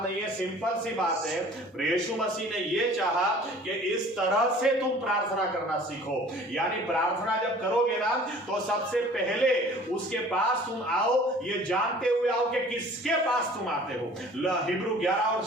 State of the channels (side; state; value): both; normal; correlation 0.49